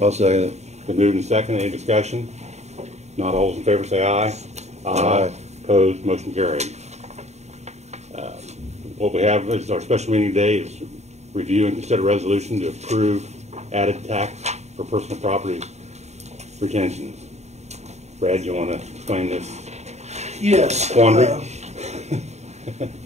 I'll second it. Been moved and second. Any discussion? Not all those in favor say aye. Aye. Opposed, motion carried. What we have is our special meeting today is review and consider resolution to approve added tax for personal property retentions. Brad, you want to explain this? Yes. Quandary?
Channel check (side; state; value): left; late; 0.32 ms